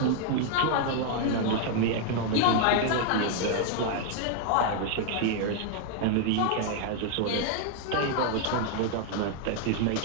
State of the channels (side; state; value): both; different; correlation 0.00